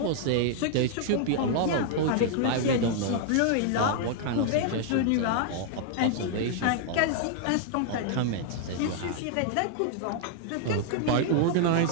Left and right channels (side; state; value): both; different; correlation 0.00